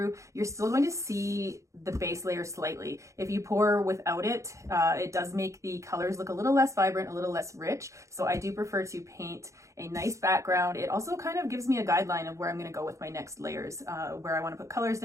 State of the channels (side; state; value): left; late; 0.15 ms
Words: you're still going to see the base layer slightly. If you pour without it, it does make the colors look a little less vibrant, a little less rich. So I do prefer to paint a nice background. It also kind of gives me a guideline of where I'm going to go with my next layers, where I want to put colors